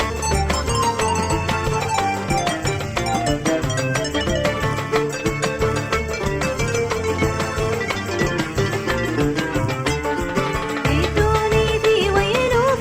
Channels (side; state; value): both; identical; correlation 1.00